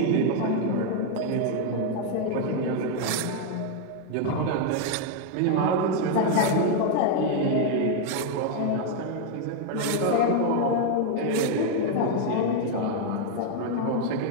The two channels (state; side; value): different; both; correlation 0.00